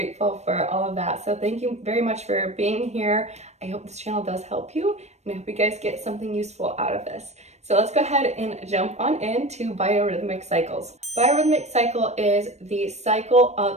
for all of that. So thank you very much for being here. I hope this channel does help you, and I hope you guys get something useful out of this. So let's go ahead and jump on into biorhythmic cycles. Biorhythmic cycle is the cycle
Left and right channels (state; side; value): late; left; 0.32 ms